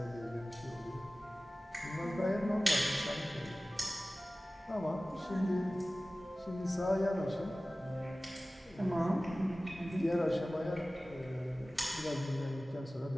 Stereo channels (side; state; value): both; normal; correlation 0.97